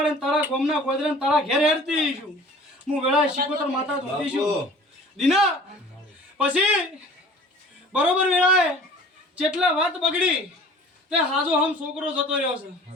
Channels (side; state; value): both; normal; correlation 0.46